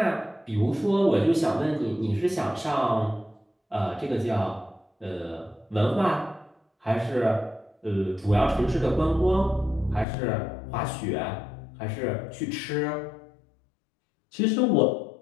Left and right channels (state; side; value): drops out; right; at 10.1 s